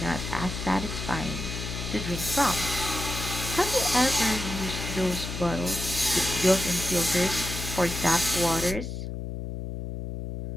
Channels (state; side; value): noise; left; hum, 6 dB below the sound